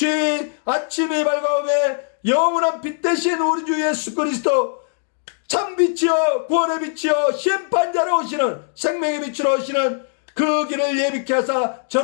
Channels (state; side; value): silent; right; 65 dB below the other